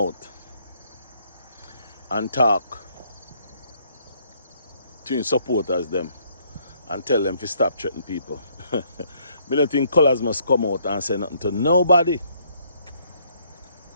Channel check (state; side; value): inverted; both; correlation -0.67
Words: and talk to his supporters them and tell them to stop threatening people. Me don't think Colaz must come out and say nothing to nobody.